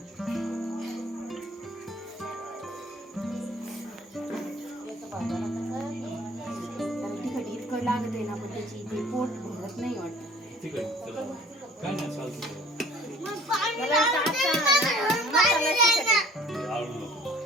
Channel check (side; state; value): both; normal; correlation 0.51